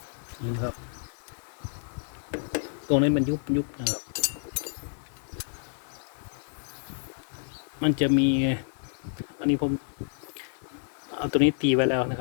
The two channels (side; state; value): right; silent; digital silence